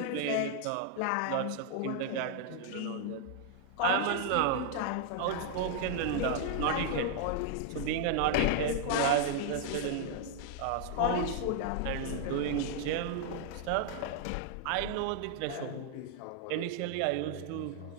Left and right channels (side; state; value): both; different; correlation 0.00